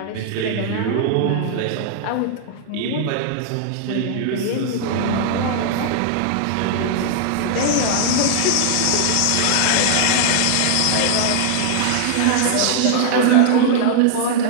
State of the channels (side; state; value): both; different; correlation -0.01